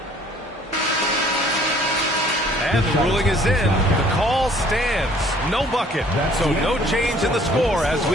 And the ruling is in. The call stands. No bucket. So no change in the score as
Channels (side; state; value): both; normal; correlation 0.57